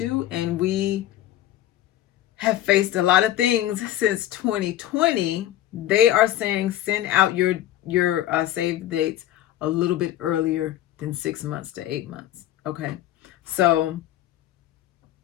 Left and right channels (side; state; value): right; quieter; 13.1 dB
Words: and we have faced a lot of things since 2020, they are saying send out your save dates a little bit earlier than 6 months to 8 months. Okay. So